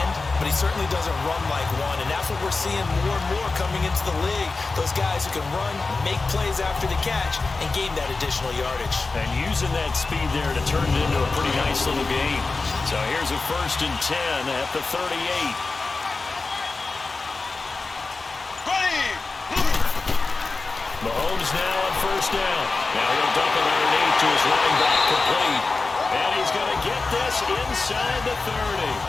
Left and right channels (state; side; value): quieter; right; 3.8 dB